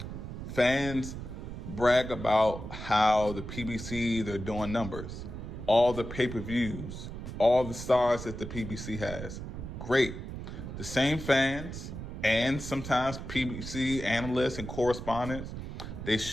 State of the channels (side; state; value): right; noise; rumble, 8 dB below the sound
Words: Fans brag about how the PBC, they're doing numbers. All the pay-per-views, all the stars that the PBC has. Great. The same fans and sometimes PBC analysts and correspondents, they